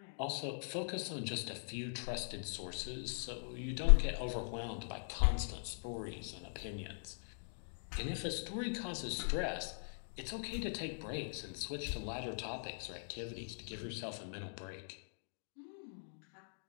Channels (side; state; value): right; silent; digital silence